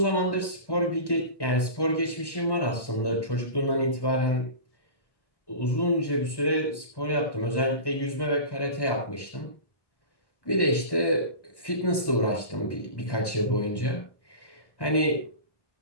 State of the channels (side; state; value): right; late; 1.1 ms